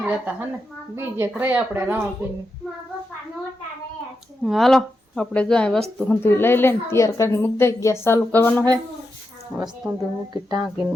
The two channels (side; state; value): both; normal; correlation 0.87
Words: રહેતા હે ને, બીજે રહે આપણે રાવણપીને. હાલો આપણે જો વસ્તુ હંધું લઈ લઈને તૈયાર કરીને મૂકી દઈ. ગેસ ચાલુ કરવાનો છે. વસ્તુ મૂકી ટાંકીને